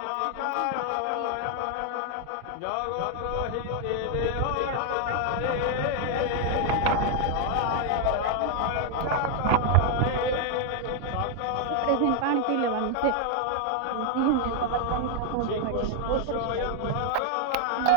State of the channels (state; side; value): different; both; correlation 0.00